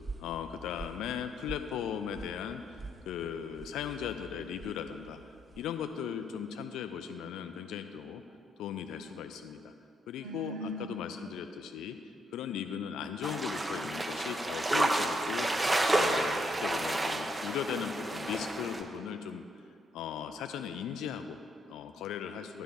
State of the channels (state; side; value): normal; both; correlation 0.74